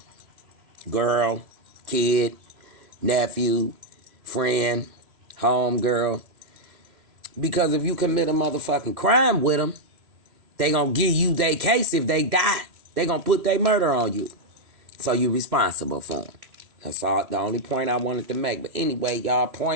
Girl, kid, nephew, friend, home girl. Because if you commit a motherfucking crime with them, they gonna give you their case if they die. They gonna put their murder on you. So you responsible for them. That's all, the only point I wanted to make. But anyway, y'all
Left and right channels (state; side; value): late; left; 3.0 ms